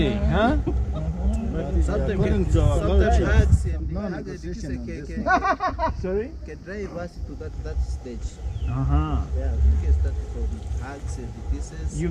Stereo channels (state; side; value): identical; both; correlation 1.00